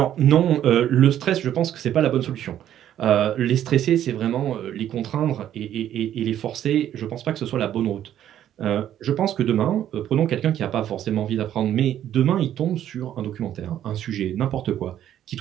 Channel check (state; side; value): quieter; left; 11.1 dB